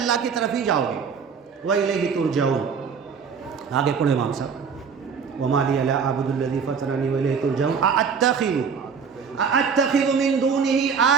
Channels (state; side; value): quieter; left; 6.2 dB